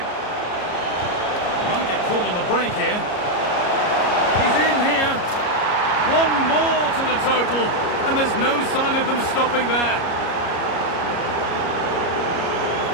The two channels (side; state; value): right; late; 33 ms